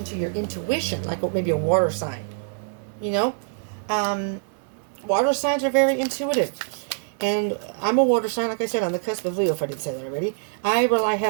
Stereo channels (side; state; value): left; silent; 62 dB below the other